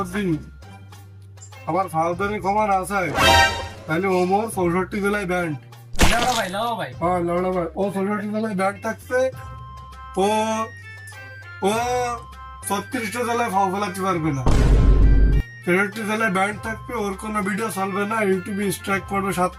আমার ফাউদারি ক্ষমা না চায়, তাহলে ওমর 64 জেলায় ব্যান্ড। হ্যাঁ লড়া ভাই, ও 64 জেলায় ব্যান্ড থাকছে। ও 36টা জেলায় ফাও ফেলাতে পারবে না, 63 জেলায় ব্যান্ড থাকবে, ওর কোনো ভিডিও চলবে না, ইউটিউবে স্ট্রাইক পড়বে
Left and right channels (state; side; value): identical; both; correlation 1.00